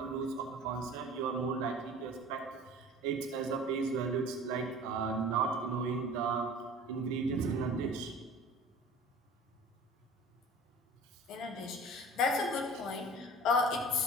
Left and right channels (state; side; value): normal; both; correlation 0.43